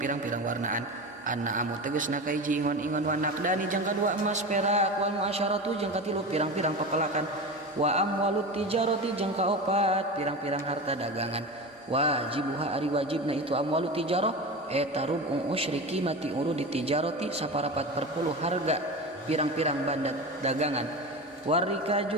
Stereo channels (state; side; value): normal; both; correlation 0.26